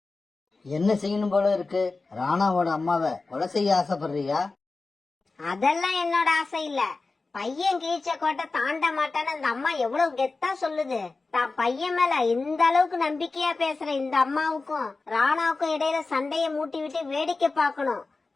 என்ன செய்யணும் போல இருக்கு? ராணாவோட அம்மாவை கொலை செய்ய ஆசைப்படுறியா? அதெல்லாம் என்னோட ஆசை இல்ல. பையன் கீழ்ச்ச கோட்டை தாண்ட மாட்டான்னு அந்த அம்மா எவ்வளவு கெத்தா சொல்லுது. தான் பையன் மேல இந்த அளவுக்கு நம்பிக்கையா பேசுற இந்த அம்மாவுக்கும் ராணாவுக்கும் இடையில சண்டைய மூட்டி விட்டு வேடிக்கை பார்க்கணும்.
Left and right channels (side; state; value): right; quieter; 3.8 dB